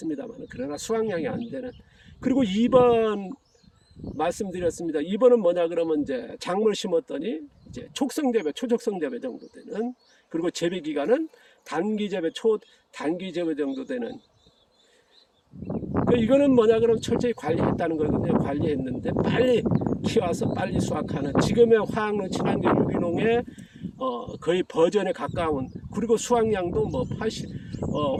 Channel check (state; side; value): identical; both; correlation 1.00